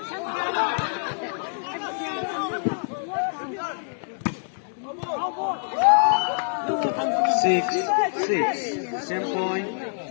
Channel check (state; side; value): silent; right; 61 dB below the other